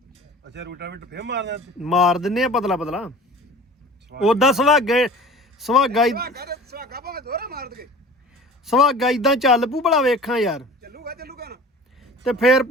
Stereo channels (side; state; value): both; normal; correlation 0.42